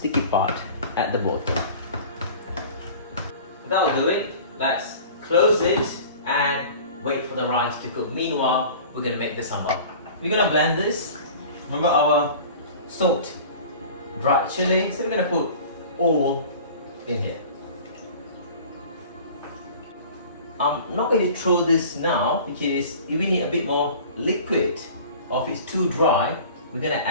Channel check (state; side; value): inverted; both; correlation -0.42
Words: part at the bottom. That'll do it. Let's close it and wait for the rice to cook. Meanwhile, we're gonna make the sambal. We're gonna blend this. Remember our salt, dried chili, so we're gonna put all in here. I'm not going to throw this now because if we need a bit more liquid, or if it's too dry, we're gonna